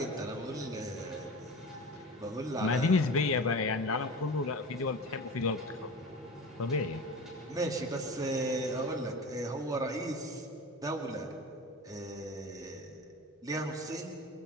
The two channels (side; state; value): both; normal; correlation 0.33